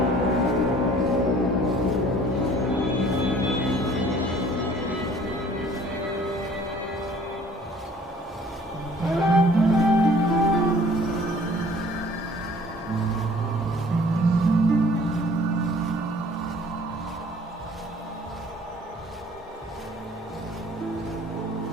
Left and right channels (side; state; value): both; normal; correlation 0.53